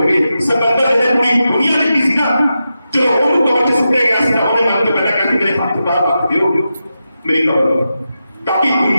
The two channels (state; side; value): inverted; both; correlation -0.89